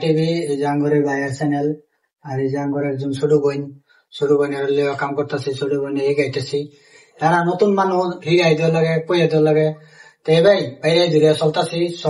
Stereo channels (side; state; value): both; identical; correlation 1.00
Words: টিভি এই যে আঙ্গুরের ভাইয়ের চ্যানেল, আর এই যে আঙ্গুরের একজন ছোট বোনের কাম করতেছি, ছোট বোনে এগাইতেছি। এরা নতুন মানুষ হিগাই দেওয়া লাগে, কইয়া দেওয়া লাগে। তো ভাই বাইরে ধীরে